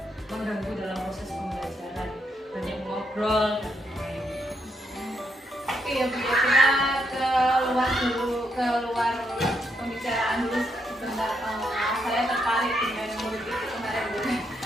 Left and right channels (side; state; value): both; normal; correlation 0.78